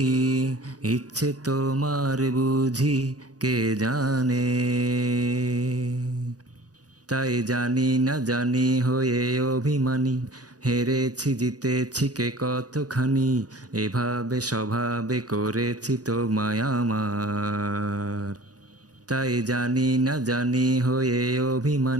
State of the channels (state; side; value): late; left; 0.68 ms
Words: ইচ্ছে তোমার বুঝি কে জানে। তাই জানি না জানি হয়ে অভিমানী, হেরেছি জিতেছি কে কতখানি, এভাবে স্বভাবে করেছি তোমায় আমার। তাই জানি না জানি হয়ে